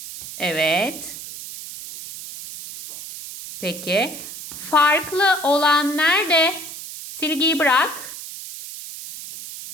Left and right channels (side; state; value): right; noise; hiss, 11 dB below the sound